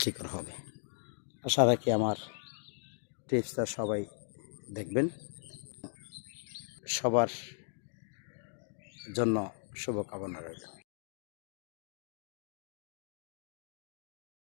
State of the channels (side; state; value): right; silent; digital silence